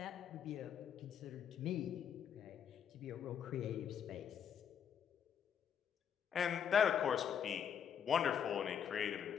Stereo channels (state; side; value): quieter; right; 8.3 dB